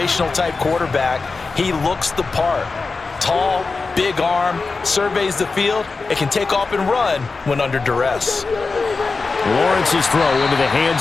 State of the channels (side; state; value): right; quieter; 4.1 dB